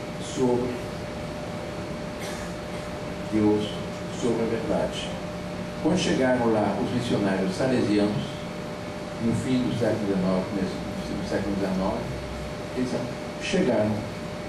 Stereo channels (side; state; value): both; identical; correlation 1.00